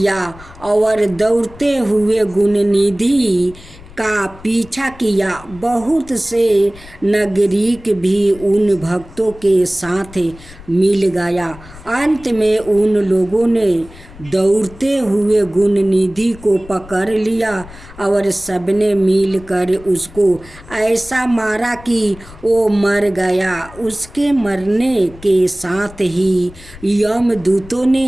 और दौड़ते हुए गुणनिधि का पीछा किया। बहुत से नागरिक भी उन भक्तों के साथ मिल गया। अंत में उन लोगों ने दौड़ते हुए गुणनिधि को पकड़ लिया और सबने मिलकर उसको ऐसा मारा कि वो मर गया। उसके मरने के साथ ही यमदूतों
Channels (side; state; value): left; noise; rumble, 19 dB below the sound